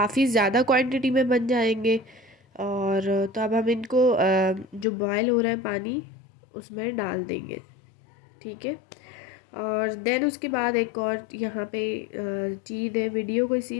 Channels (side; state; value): right; drops out; at 4.9 s